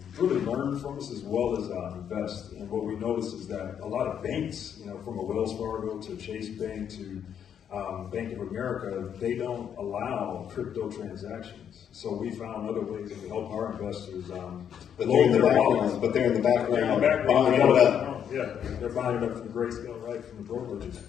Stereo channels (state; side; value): quieter; right; 8.6 dB